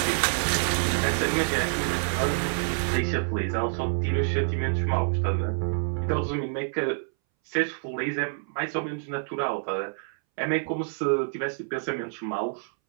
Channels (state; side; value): silent; left; 60 dB below the other